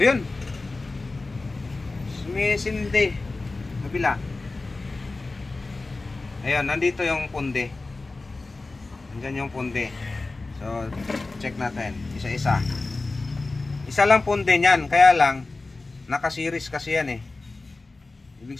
yun, sumisindi kabila. Ayan, nandito yung pundi. Diyan yung pundi. So, check natin. Isa-isa. Isa lang pundi niyan. Kaya lang, naka-series kasi yan eh. Ibig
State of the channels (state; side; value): quieter; right; 3.4 dB